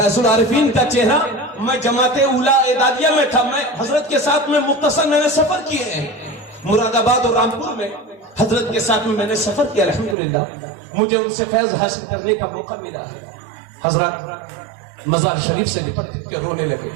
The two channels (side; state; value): left; drops out; at 10.2 s